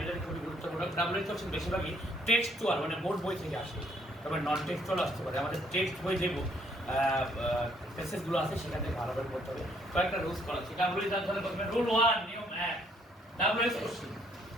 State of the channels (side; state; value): both; normal; correlation 0.67